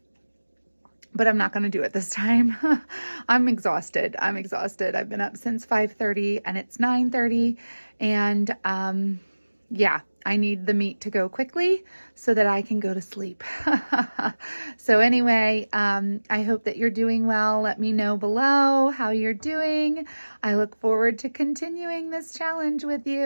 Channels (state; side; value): inverted; both; correlation -1.00